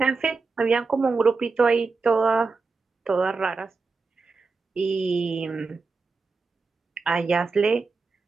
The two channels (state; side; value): quieter; left; 4.3 dB